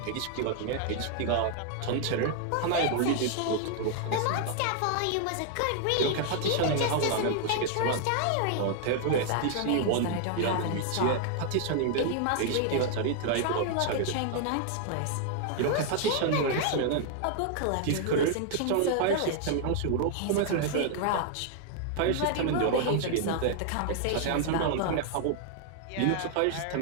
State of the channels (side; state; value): both; different; correlation 0.00